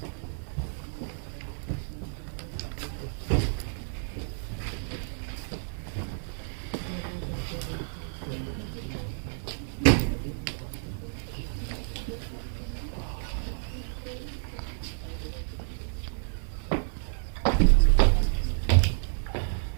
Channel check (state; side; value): silent; left; digital silence